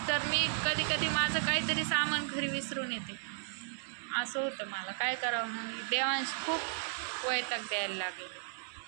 तर मी कधी कधी माझं काहीतरी सामान घरी विसरून येते. असं होतं मला. काय करावं मग. देवांशी खूप वैताग द्यायला लागले.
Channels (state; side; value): silent; left; digital silence